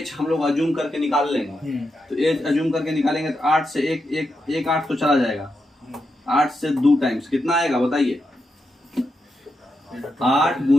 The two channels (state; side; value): normal; both; correlation 0.86